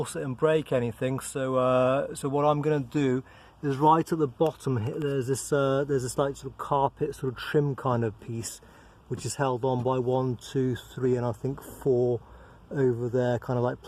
it and break anything. So so what I'm going to do is right at the bottom here, there's this like sort of carpet sort of trim kind of piece, which is held on by 1, 2, 3 and I think 4 over there, kind of like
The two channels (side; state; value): both; identical; correlation 1.00